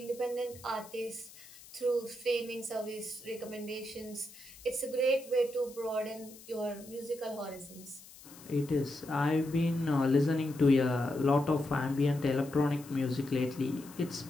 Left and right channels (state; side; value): noise; left; hiss, 19 dB below the sound